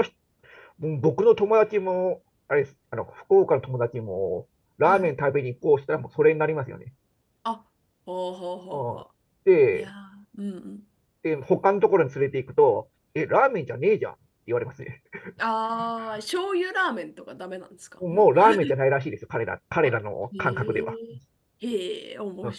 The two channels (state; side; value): identical; both; correlation 1.00